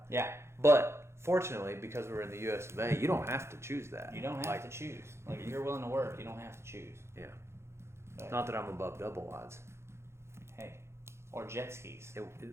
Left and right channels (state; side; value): late; left; 0.13 ms